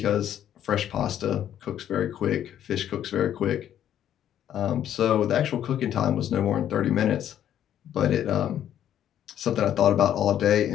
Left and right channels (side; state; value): right; quieter; 10.6 dB